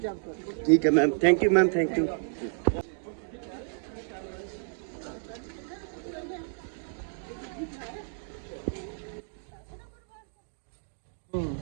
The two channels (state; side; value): silent; left; digital silence